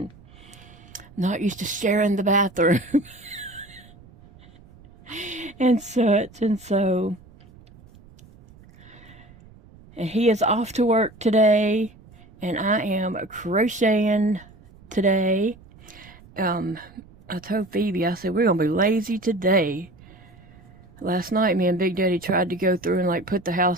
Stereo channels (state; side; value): noise; right; rumble, 24 dB below the sound